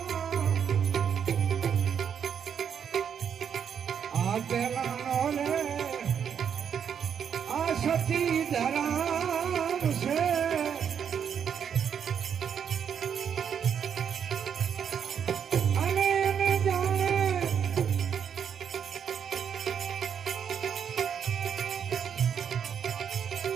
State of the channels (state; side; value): quieter; left; 7.9 dB